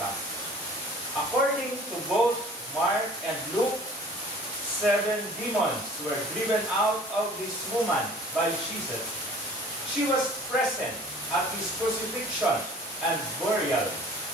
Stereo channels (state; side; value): normal; both; correlation 0.48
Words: According to both Mark and Luke, 7 demons were driven out of this woman by Jesus. She was present at his crucifixion and burial,